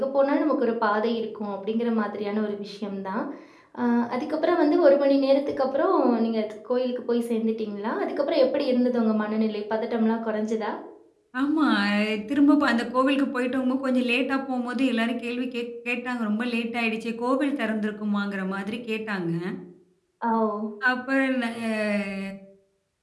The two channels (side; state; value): both; identical; correlation 1.00